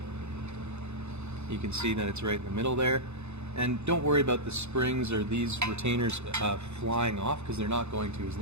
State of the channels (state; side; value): late; left; 0.81 ms